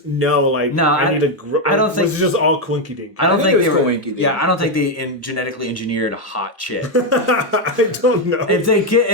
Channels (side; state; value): both; normal; correlation 0.05